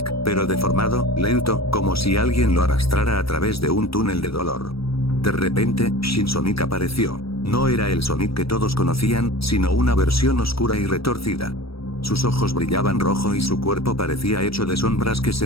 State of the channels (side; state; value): right; late; 0.76 ms